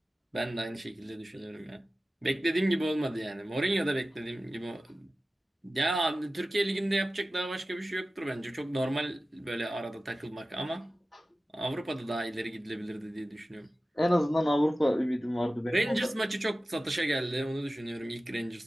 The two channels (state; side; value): normal; both; correlation 0.95